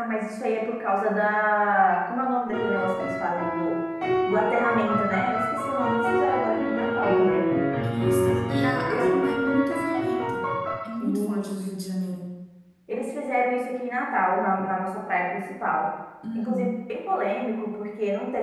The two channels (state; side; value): identical; both; correlation 1.00